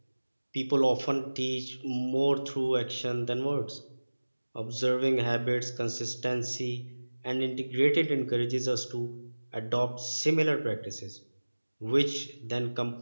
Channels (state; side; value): inverted; both; correlation -1.00